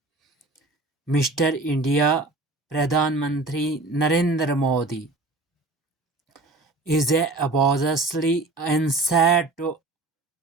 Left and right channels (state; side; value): quieter; left; 3.1 dB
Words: Mr. India Pradhan Mantri Narendra Modi is a obviously inside to